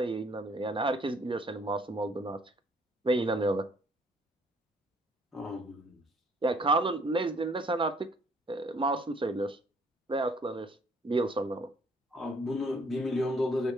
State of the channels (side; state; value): both; normal; correlation 0.62